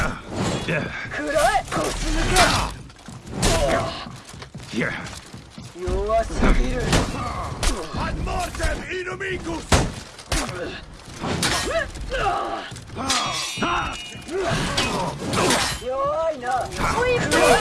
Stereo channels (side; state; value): both; identical; correlation 1.00